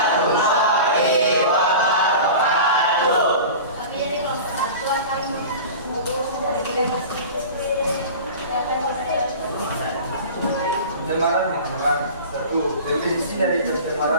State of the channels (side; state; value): both; inverted; correlation -0.35